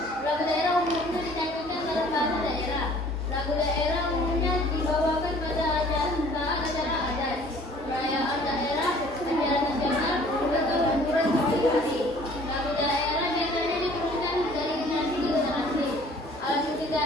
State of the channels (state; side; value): normal; both; correlation 0.53